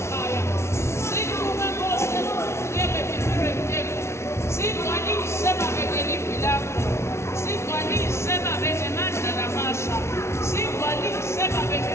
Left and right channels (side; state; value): right; late; 0.13 ms